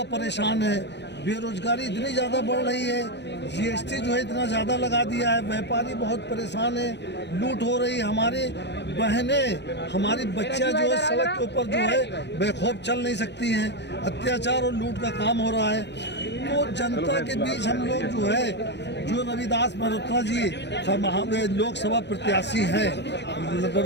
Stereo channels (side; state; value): right; late; 0.50 ms